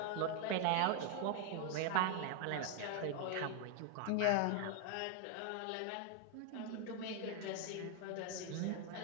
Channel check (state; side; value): different; both; correlation 0.00